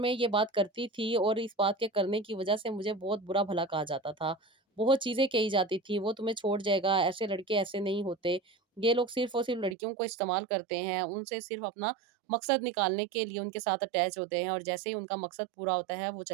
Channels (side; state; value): left; drops out; at 9.8 s